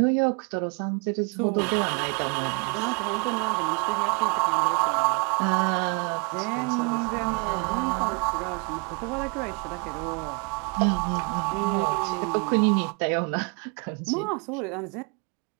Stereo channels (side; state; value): left; quieter; 34.6 dB